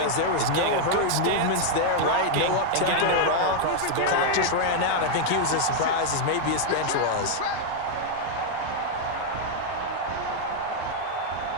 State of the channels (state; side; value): different; both; correlation 0.00